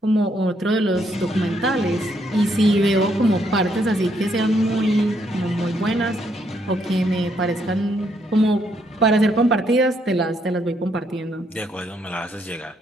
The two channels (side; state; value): both; normal; correlation 0.73